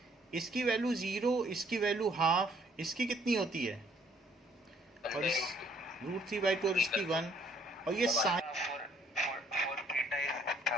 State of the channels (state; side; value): normal; both; correlation 0.63